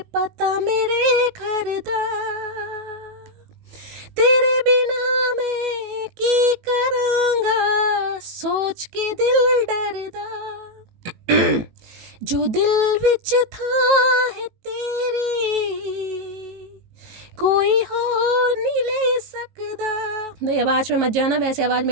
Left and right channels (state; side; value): late; left; 19 ms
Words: पता मेरे घर दा, तेरे बिना मैं की करांगा सोच के दिल डरदा। जो दिल विच था है तेरी कोई और नहीं ले सकदा। नहीं, आवाज़ में मत जाना, वैसे आवाज़